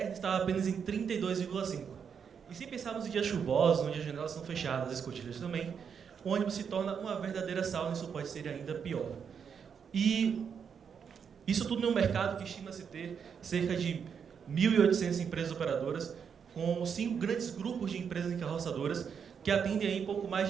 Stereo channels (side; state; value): left; quieter; 7.0 dB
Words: estava apenas em 32,5. E se pensarmos em dias chuvosos, onde as janelas são fechadas, as escotilhas também, o ônibus se torna uma verdadeira sauna e isso pode ser ainda pior. E isso tudo em um mercado que estima-se ter cerca de 1.800 empresas operadoras, com 5 grandes grupos de empresas encarroçadoras que atendem aí pouco mais